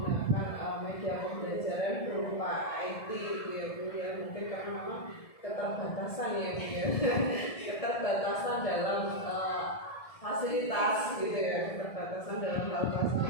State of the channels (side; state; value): right; late; 1.7 ms